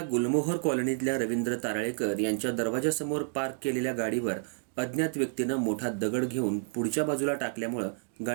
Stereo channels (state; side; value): silent; left; digital silence